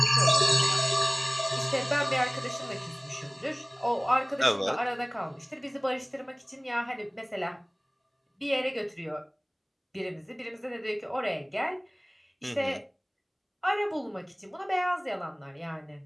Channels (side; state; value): both; identical; correlation 1.00